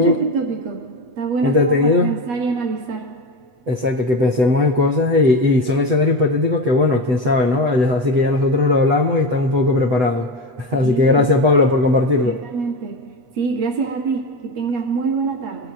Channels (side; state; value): left; late; 8.0 ms